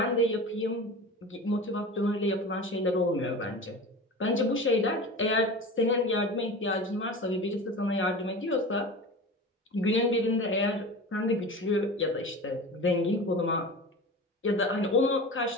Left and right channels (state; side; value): normal; both; correlation 0.33